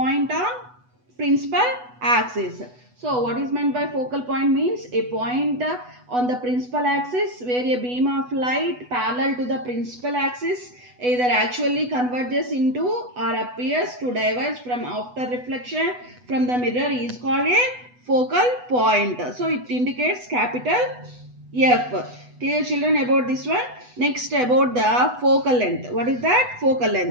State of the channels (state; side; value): late; left; 8.1 ms